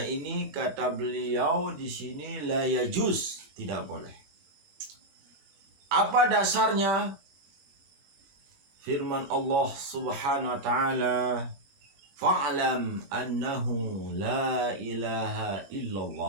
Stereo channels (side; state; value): left; late; 22 ms